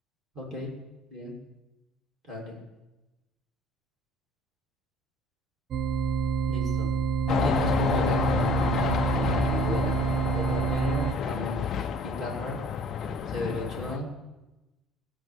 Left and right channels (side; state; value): both; normal; correlation 0.53